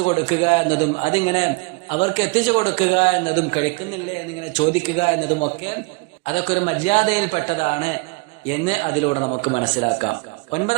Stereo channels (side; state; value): left; quieter; 27.1 dB